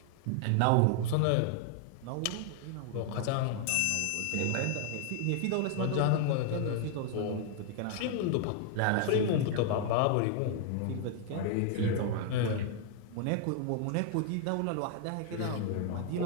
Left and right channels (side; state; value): both; different; correlation 0.00